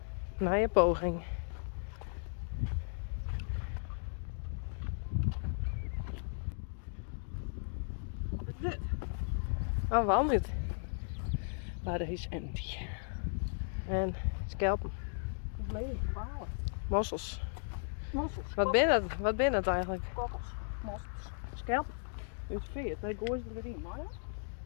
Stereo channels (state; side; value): silent; right; digital silence